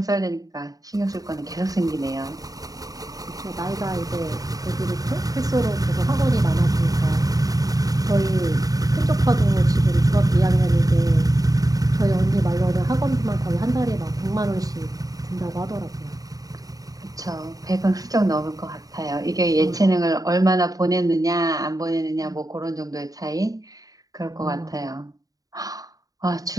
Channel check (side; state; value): left; late; 0.18 ms